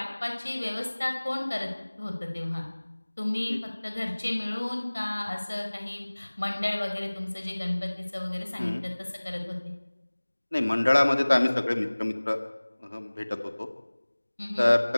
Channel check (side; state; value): both; inverted; correlation -1.00